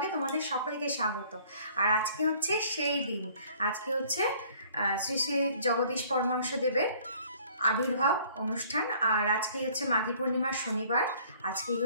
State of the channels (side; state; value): both; inverted; correlation -0.56